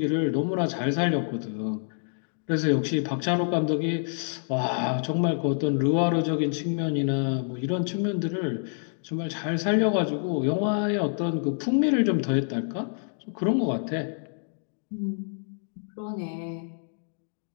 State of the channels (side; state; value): right; silent; digital silence